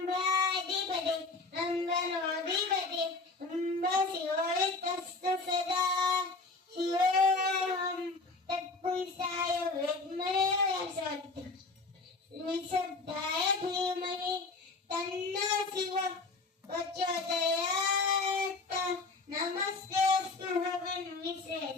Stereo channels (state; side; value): quieter; right; 3.6 dB